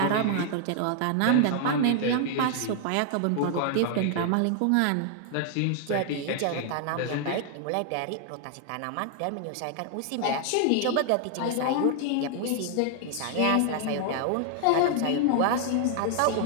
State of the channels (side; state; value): both; different; correlation 0.00